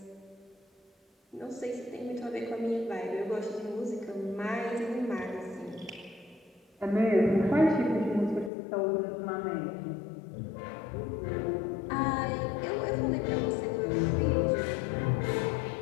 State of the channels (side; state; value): right; drops out; at 8.5 s